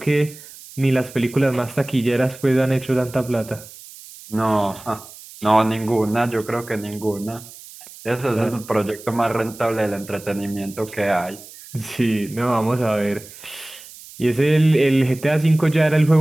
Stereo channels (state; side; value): noise; right; hiss, 18 dB below the sound